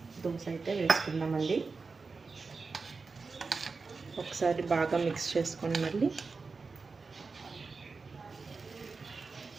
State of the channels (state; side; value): quieter; left; 4.4 dB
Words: దోశ అయితే వేసుకుందామండి. ఒకసారి బాగా మిక్స్ చేసుకొని మళ్ళీ